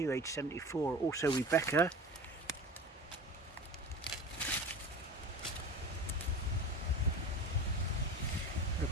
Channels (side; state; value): both; normal; correlation 0.33